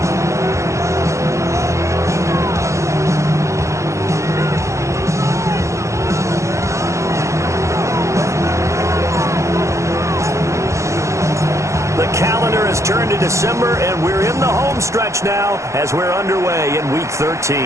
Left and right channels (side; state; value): left; late; 0.14 ms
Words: Calendar has turned to December, and we're in the home stretch now as we're underway in Week 13.